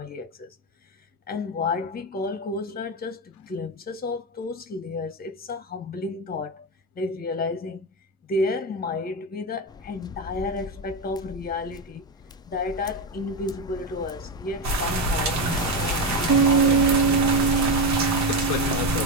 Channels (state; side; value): normal; both; correlation 0.13